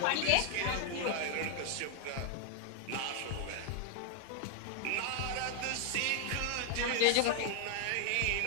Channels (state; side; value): different; both; correlation 0.00